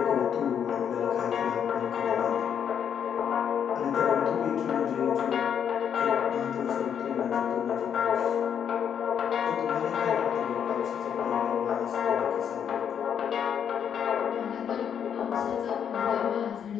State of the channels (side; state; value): right; quieter; 8.3 dB